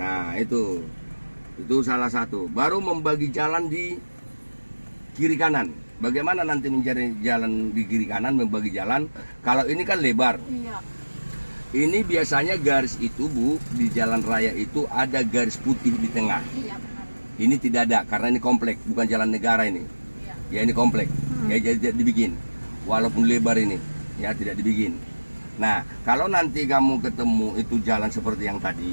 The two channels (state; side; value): inverted; both; correlation -1.00